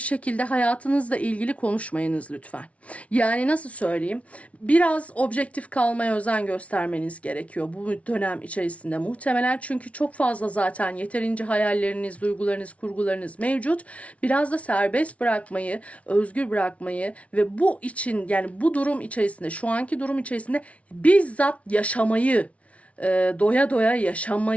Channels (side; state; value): right; late; 0.064 ms